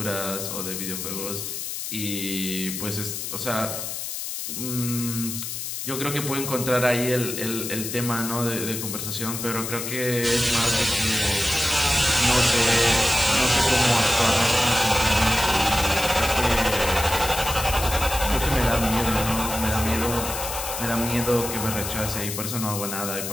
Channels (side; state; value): left; noise; hiss, 5 dB below the sound